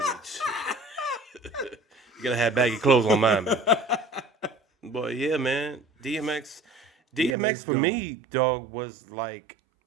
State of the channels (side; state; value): left; drops out; at 7.4 s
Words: beach. You gotta have baggy clothes on mine, man. But yeah, man, DMX for me, dog, was like,